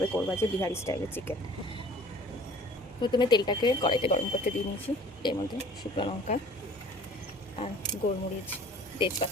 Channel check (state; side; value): normal; both; correlation 0.49